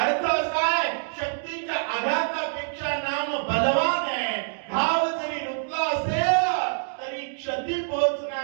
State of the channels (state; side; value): silent; left; digital silence